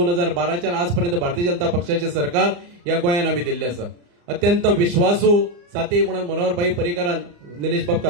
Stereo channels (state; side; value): late; left; 34 ms